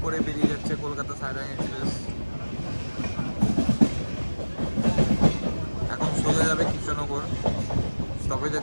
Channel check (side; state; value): both; inverted; correlation -1.00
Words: করে বেরিয়ে যাচ্ছে কলকাতা সাইরাং এক্সপ্রেস। এখন সোজা যাবে কৃষ্ণনগর, স্টপেজ